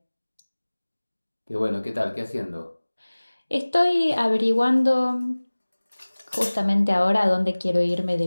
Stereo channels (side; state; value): both; inverted; correlation -1.00